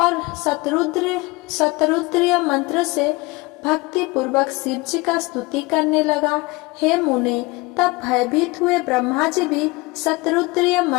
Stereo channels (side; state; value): right; quieter; 24.1 dB